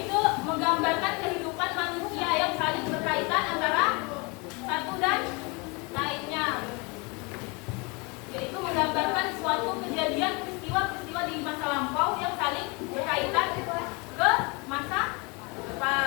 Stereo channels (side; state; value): right; quieter; 29.3 dB